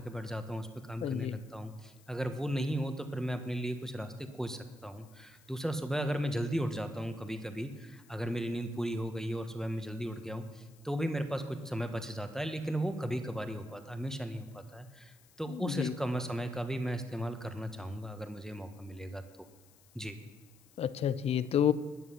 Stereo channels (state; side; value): noise; left; hiss, 27 dB below the sound